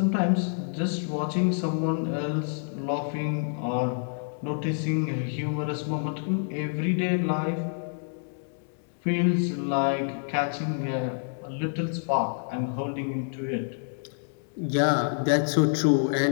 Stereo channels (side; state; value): right; silent; digital silence